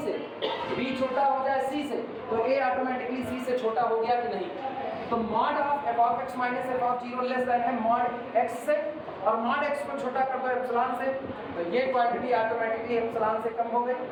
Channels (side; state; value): both; identical; correlation 1.00